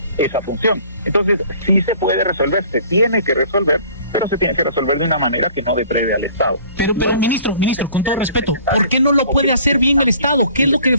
función. Entonces sí se puede resolver, se tiene que resolver, pero se tiene que resolver de una manera que no deprede al Estado. Pero ministro, con todo respeto, ¿por qué no lo puede hacer bien el Estado? ¿Qué es lo que le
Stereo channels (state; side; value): inverted; both; correlation -0.51